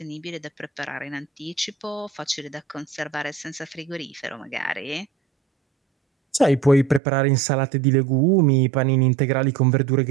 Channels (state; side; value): drops out; left; at 7.0 s